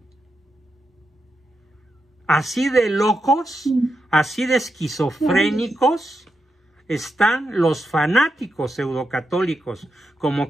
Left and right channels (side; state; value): both; normal; correlation 0.86